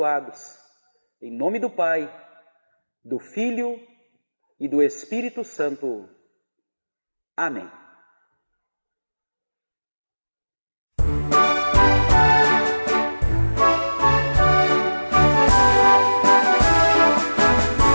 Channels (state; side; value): inverted; both; correlation -1.00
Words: Em nome do Pai, do Filho e do Espírito Santo. Amém.